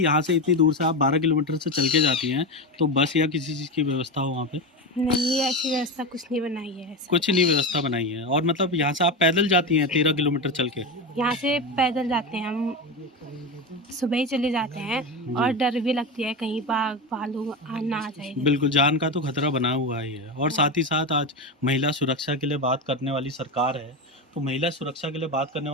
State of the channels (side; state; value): both; normal; correlation 0.19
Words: से इतनी दूर से आप 12 किलोमीटर से चल के जाती हैं, तो बस या किसी चीज़ की व्यवस्था हो वहाँ पे? नहीं, ऐसी व्यवस्था कुछ नहीं बनाई है ऐसे। कुछ नहीं व्यवस्था बनाई है। और मतलब यहाँ से आप पैदल जाती हैं 13 किलोमीटर चल के? यहाँ से पैदल जाते हैं हम, सुबह ही चले जाते हैं और डर भी लगती है कहीं बाघ भालू ना आ जाए। बिल्कुल, जान का तो खतरा बना हुआ ही है। और साथ ही साथ आज महिला सुरक्षा के लिए बात करने वाली सरकार है, तो महिला सुरक्षा के लिए बात करने